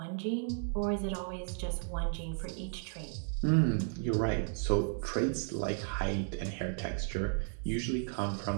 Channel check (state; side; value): silent; left; 55 dB below the other